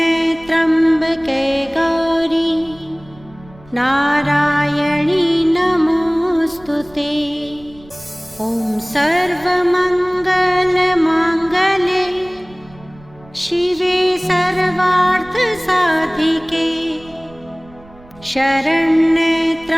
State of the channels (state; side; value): noise; right; rumble, 24 dB below the sound